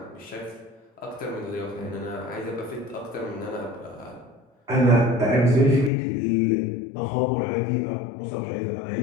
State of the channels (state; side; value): drops out; right; at 5.9 s